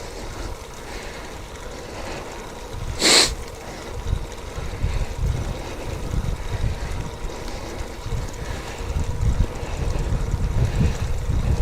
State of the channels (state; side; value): identical; both; correlation 1.00